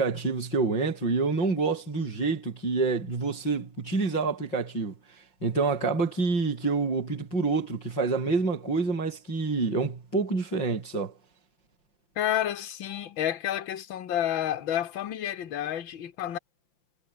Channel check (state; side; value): late; right; 5.8 ms